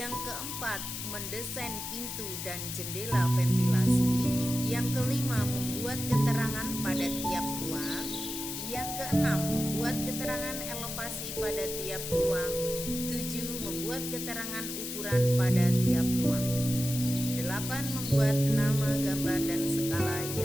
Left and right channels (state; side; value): noise; left; hiss, 6 dB below the sound